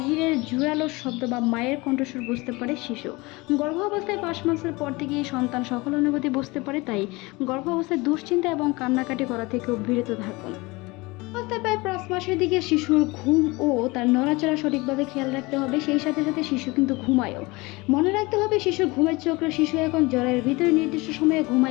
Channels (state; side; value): quieter; right; 23.8 dB